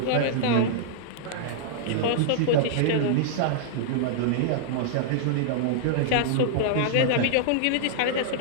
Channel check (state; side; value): different; both; correlation -0.02